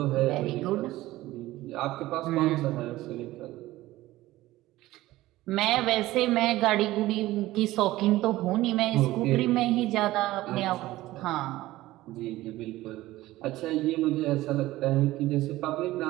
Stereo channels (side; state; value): left; quieter; 16.9 dB